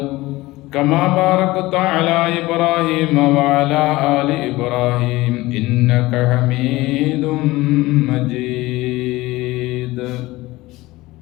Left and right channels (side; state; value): right; quieter; 19.3 dB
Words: كما باركت على إبراهيم وعلى آل إبراهيم إنك حميد مجيد.